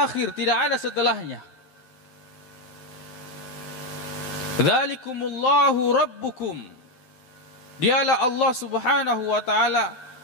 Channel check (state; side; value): late; right; 12 ms